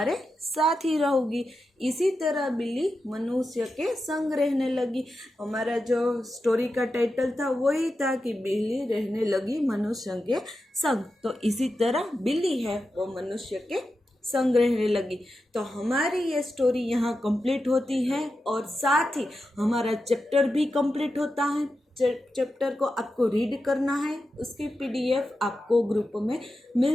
साथ ही रहूंगी। इसी तरह बिल्ली मनुष्य के संग रहने लगी। हमारा जो स्टोरी का टाइटल था वही था कि बिल्ली रहने लगी मनुष्य के संग। तो इसी तरह बिल्ली है वो मनुष्य के संग रहने लगी। तो हमारी ये स्टोरी यहाँ कंप्लीट होती है और साथ ही हमारा चैप्टर भी कंप्लीट होता है। चैप्टर को आपको रीड करना है, उसकी PDF आपको ग्रुप में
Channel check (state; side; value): normal; both; correlation 0.90